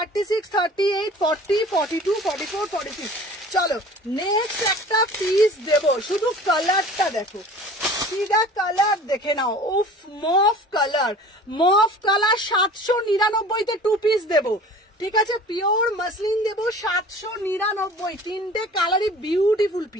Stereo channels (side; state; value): both; normal; correlation 0.44